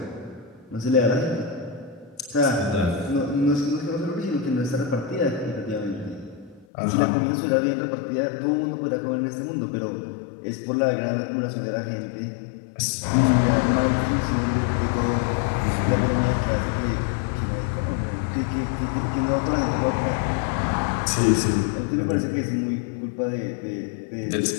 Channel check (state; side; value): drops out; right; at 6.7 s